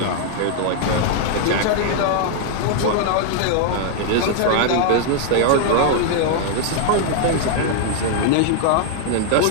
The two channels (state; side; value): different; both; correlation 0.00